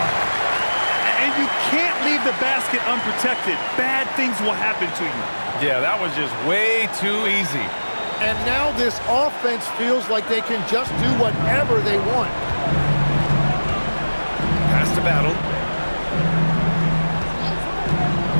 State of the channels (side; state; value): both; inverted; correlation -1.00